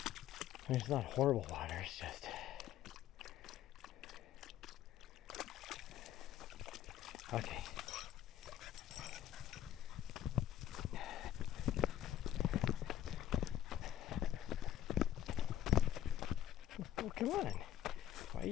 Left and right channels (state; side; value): quieter; right; 11.5 dB